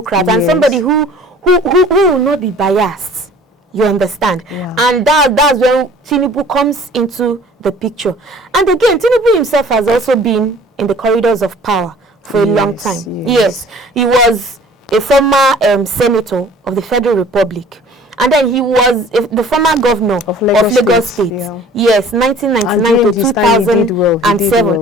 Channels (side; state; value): both; normal; correlation 0.49